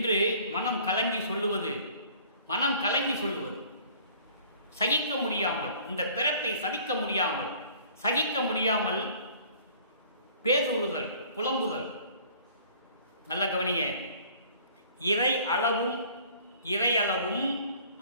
மனம் கலங்கி சொல்லுவது, மனம் கலங்கி சொல்லுவது, சகிக்க முடியாமல், இந்த பிறப்பை சகிக்க முடியாமல் பேசுறுதல், புலம்புதல். நல்ல கவனிங்க. இறையளவும்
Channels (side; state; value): both; inverted; correlation -0.52